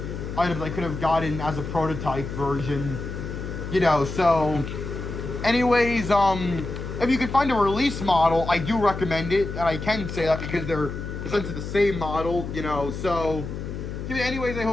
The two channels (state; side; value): noise; left; hum, 7 dB below the sound